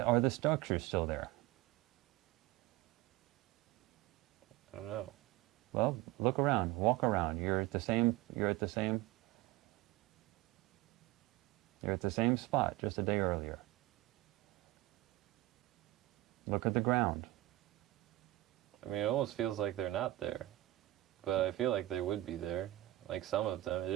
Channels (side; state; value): left; quieter; 17.5 dB